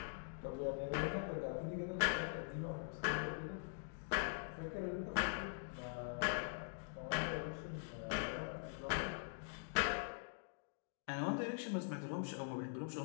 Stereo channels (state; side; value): silent; right; digital silence